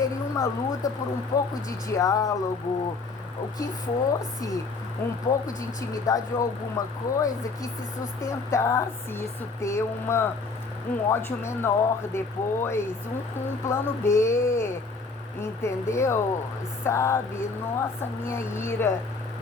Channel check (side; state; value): right; quieter; 4.0 dB